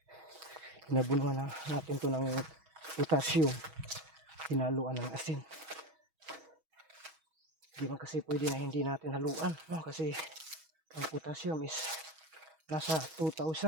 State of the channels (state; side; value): late; left; 6.3 ms